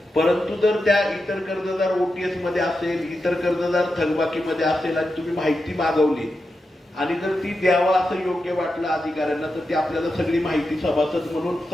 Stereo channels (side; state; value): both; normal; correlation 0.89